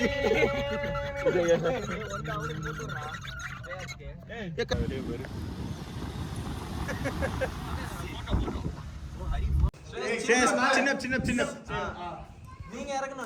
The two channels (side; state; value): both; identical; correlation 1.00